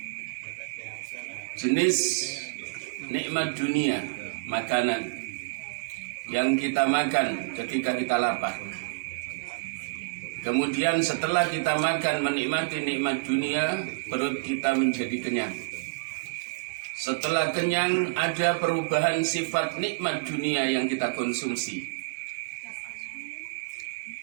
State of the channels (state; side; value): quieter; left; 32.5 dB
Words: jenis nikmat dunia, makanan yang kita makan ketika kita lapar. Kemudian setelah kita makan menikmati nikmat dunia, perut kita menjadi kenyang. Setelah kenyang ada perubahan sifat nikmat dunia yang kita konsumsi,